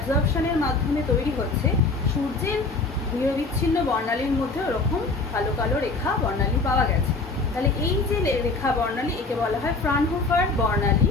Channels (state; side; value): quieter; right; 3.6 dB